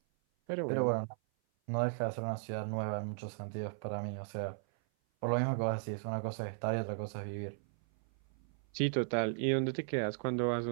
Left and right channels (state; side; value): silent; left; 54 dB below the other